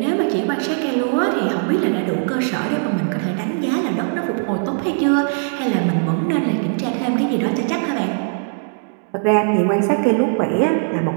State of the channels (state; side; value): silent; left; 66 dB below the other